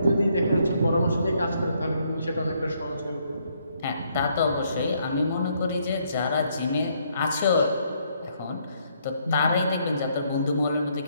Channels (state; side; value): inverted; both; correlation -0.71